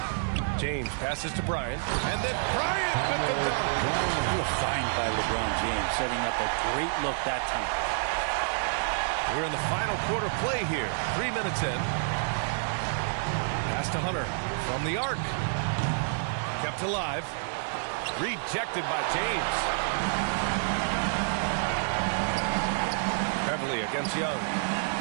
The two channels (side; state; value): left; silent; digital silence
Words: James passes to Bryant, and then Bryant with the dunk. What a find by LeBron James, setting up a great look that time. We're in the final quarter play here. 3 minutes in. Pass to Hunter from the arc. Kept alive. Rejected by James. Beverley against Young.